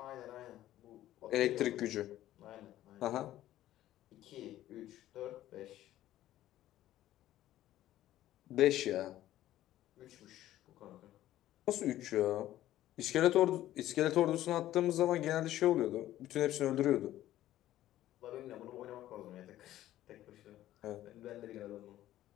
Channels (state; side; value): quieter; right; 13.7 dB